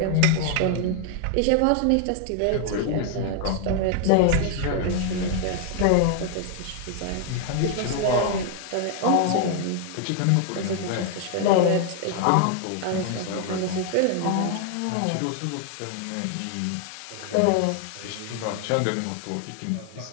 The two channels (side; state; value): both; different; correlation 0.00